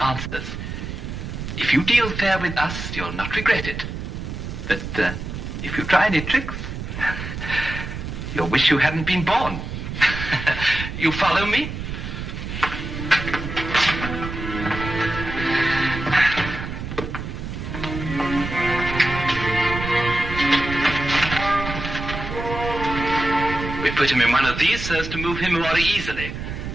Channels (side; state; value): right; noise; rumble, 7 dB below the sound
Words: answers. If you deal fair with us, you'll not regret it. But if you try any tricks, you'll wish you hadn't been born. You follow me? We put him in one of these so as to move him more easily.